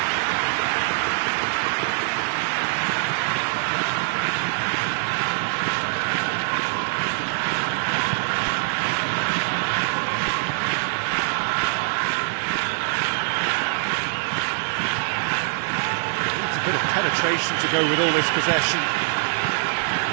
It's a bit of penetration to go with all this possession.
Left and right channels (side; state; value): left; silent; digital silence